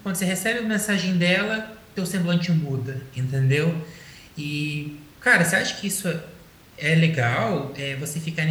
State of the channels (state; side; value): identical; both; correlation 1.00